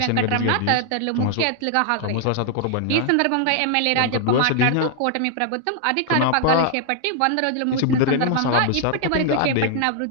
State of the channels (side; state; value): both; different; correlation 0.00